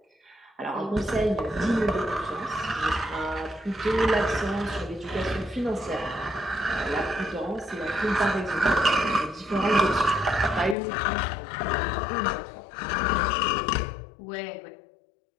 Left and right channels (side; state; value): right; drops out; at 10.8 s